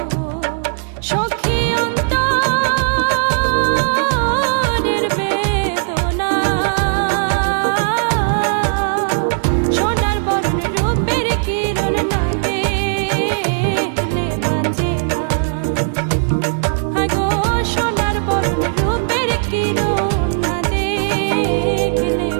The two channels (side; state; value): left; silent; digital silence